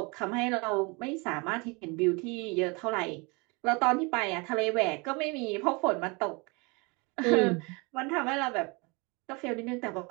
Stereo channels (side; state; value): left; quieter; 28.8 dB